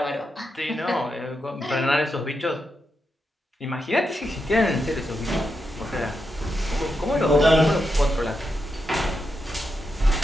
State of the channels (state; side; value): normal; both; correlation 0.85